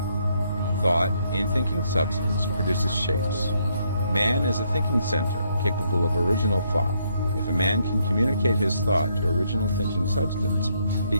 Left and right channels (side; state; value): both; inverted; correlation -0.73